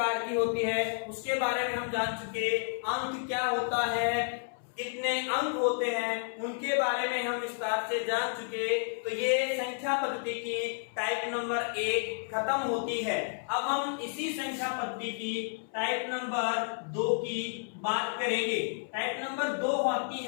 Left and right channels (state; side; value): silent; right; 57 dB below the other